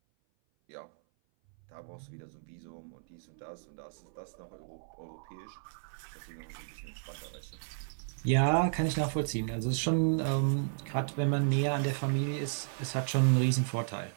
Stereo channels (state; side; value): silent; left; 56 dB below the other